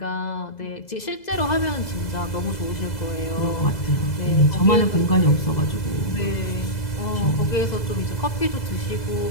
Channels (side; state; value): right; late; 2.0 ms